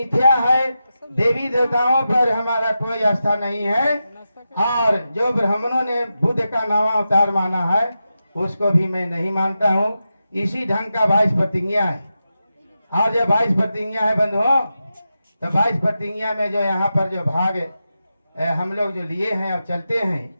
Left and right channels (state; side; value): inverted; both; correlation -0.90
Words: है, देवी देवताओं पर हमारा कोई आस्था नहीं है, और जो ब्राह्मणों ने बुद्ध का नवा अवतार माना है उसको भी मैं नहीं मानता हूँ। इसी ढंग का 22 प्रतिज्ञा है। और जो 22 प्रतिज्ञा है बंधुओं, तो 22 प्रतिज्ञा में जो यहाँ पर जो भाग हम लोग जो लिए हैं और चलते हैं,